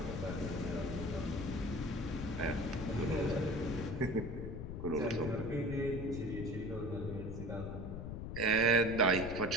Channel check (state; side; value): noise; left; rumble, 6 dB below the sound